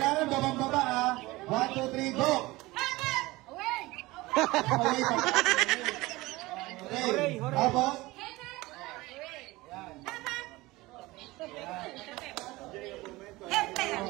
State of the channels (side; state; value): left; quieter; 20.4 dB